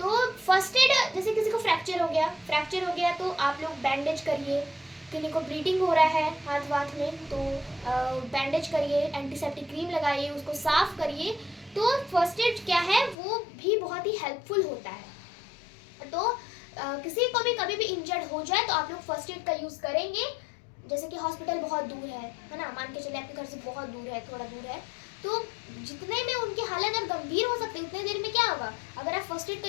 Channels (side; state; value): right; drops out; at 13.2 s